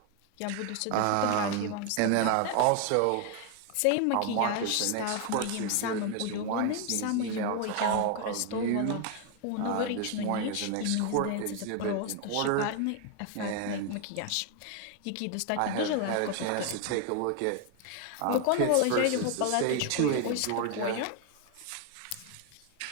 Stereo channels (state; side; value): different; both; correlation 0.01